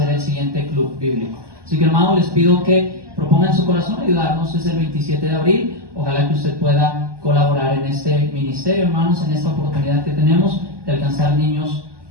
el siguiente club bíblico. Así que, hermanos, les pido que propongan en su corazón ayudarnos. Es el 27 de abril. Ojalá que usted pueda colaborar en este ministerio, hermanos, en esta oportunidad que tenemos de alcanzar niños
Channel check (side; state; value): left; late; 1.2 ms